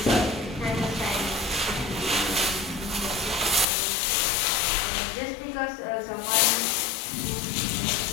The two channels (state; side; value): drops out; right; at 3.7 s